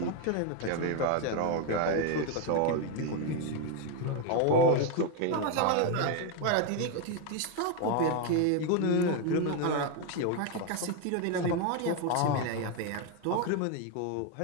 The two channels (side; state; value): both; different; correlation 0.01